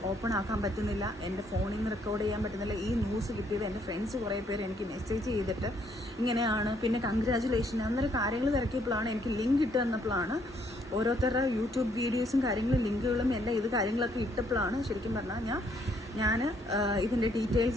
ഓപ്പൺ ആക്കാൻ പറ്റുന്നില്ല, എൻ്റെ ഫോണിൽ നിന്ന് റെക്കോർഡ് ചെയ്യാൻ പറ്റുന്നില്ല. ഈ ന്യൂസ് കിട്ടിയത് എൻ്റെ ഫ്രണ്ട്സ് കുറേ പേര് എനിക്ക് മെസ്സേജ് ചെയ്തിട്ട് ഇങ്ങനെയാണ്, പിന്നെ കൺഗ്രാജുലേഷൻ അന്നേരം കാര്യങ്ങൾ തിരക്കിയപ്പോഴാണ് എനിക്ക് ലിങ്ക് ഇട്ട് തന്നപ്പോഴാണ് ഓരോരുത്തരുടെ യൂട്യൂബ് വീഡിയോസും കാര്യങ്ങളും ലിങ്കുകളും എല്ലാം ഇത് കാര്യങ്ങളൊക്കെ ഇട്ടപ്പോഴാണ് ശരിക്കും പറഞ്ഞാൽ ഞാൻ ഇതിൻ്റെ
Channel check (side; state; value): both; normal; correlation 0.69